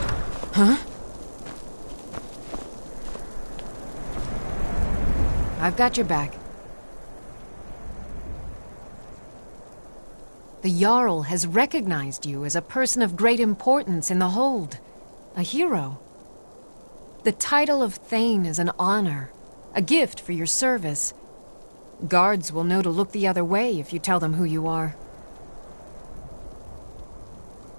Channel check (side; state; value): both; inverted; correlation -1.00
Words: Huh? I've got your back. The Jarl has recognized you as a person of great importance in the Hold. A hero. The title of Thane is an honor, a gift for your service. Guards will know to look the other way if you tell them who you are.